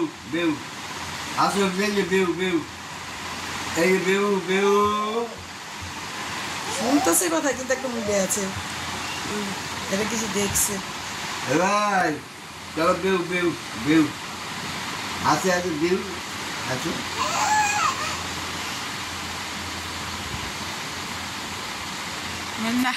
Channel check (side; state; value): both; identical; correlation 1.00